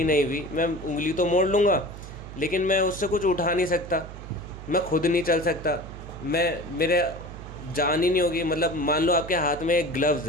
नहीं हुई, मैं उंगली तो मोड़ लूँगा, लेकिन मैं उससे कुछ उठा नहीं सकता, मैं खुद नहीं चल सकता, मेरे जान ही नहीं होगी। मतलब मान लो आपके हाथ में एक ग्लव्स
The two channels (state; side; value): noise; right; hum, 13 dB below the sound